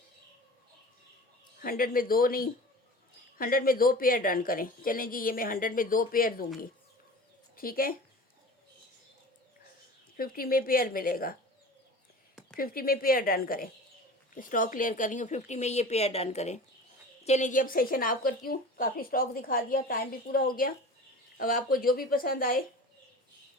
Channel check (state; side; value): normal; both; correlation 0.37